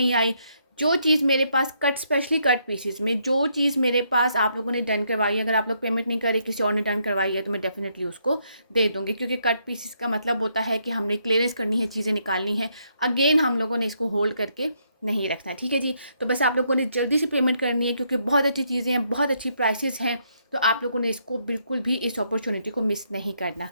आई। जो चीज़ मेरे पास कट, स्पेशली कट पीसेस में जो चीज़ मेरे पास आप लोगों ने डन करवाई है, अगर आप लोग पेमेंट नहीं करे, किसी और ने डन करवाई है, तो मैं डेफिनेटली उसको दे दूँगी, क्योंकि कट पीसेस का मतलब होता है कि हमने क्लियरेंस करनी है, चीज़ें निकालनी है। अगेन हम लोगों ने इसको होल्ड करके नहीं रखना है। ठीक है जी, तो बस आप लोगों ने जल्दी से पेमेंट करनी है, क्योंकि बहुत अच्छी चीज़ें हैं, बहुत अच्छी प्राइसेस हैं। तो आप लोगों ने इसको बिल्कुल भी इस अपॉर्चुनिटी को मिस नहीं करना।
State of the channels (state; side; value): inverted; both; correlation -0.75